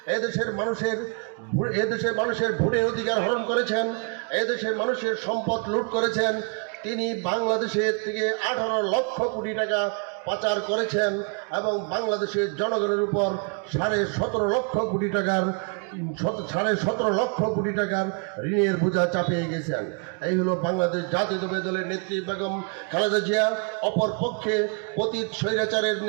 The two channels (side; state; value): left; quieter; 38.6 dB